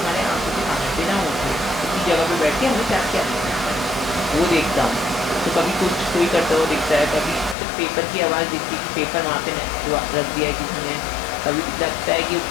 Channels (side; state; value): right; drops out; at 7.6 s